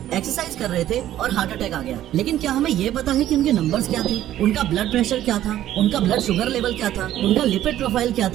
एक्सरसाइज कर रहे थे और हार्ट अटैक आ गया। लेकिन क्या हमें ये पता है कि उनके नंबर्स क्या थे, उनका ब्लड प्रेशर क्या था, उनका ब्लड शुगर लेवल क्या था, उनका लिपिड प्रोफाइल क्या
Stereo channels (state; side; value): quieter; left; 12.7 dB